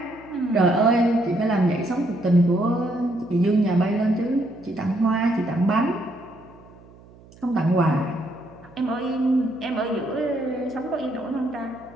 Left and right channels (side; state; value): right; noise; hum, 24 dB below the sound